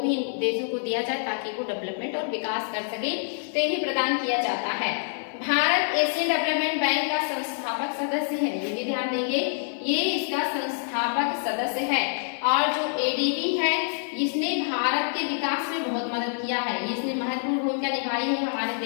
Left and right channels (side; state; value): right; silent; digital silence